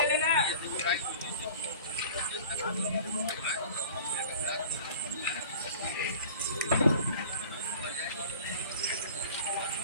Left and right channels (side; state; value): both; inverted; correlation -0.42